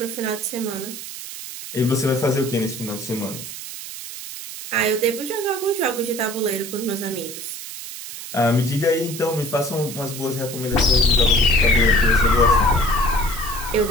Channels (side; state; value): right; noise; hiss, 10 dB below the sound